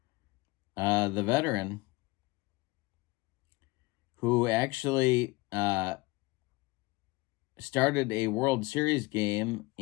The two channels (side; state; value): right; quieter; 23.3 dB